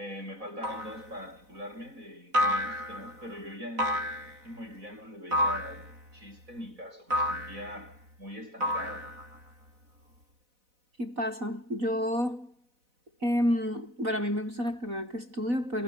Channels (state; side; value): late; left; 4.0 ms